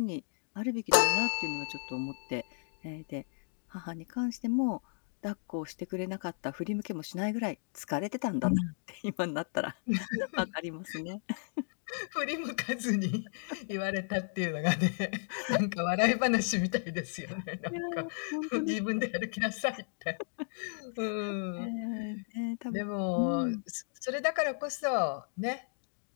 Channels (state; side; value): silent; right; digital silence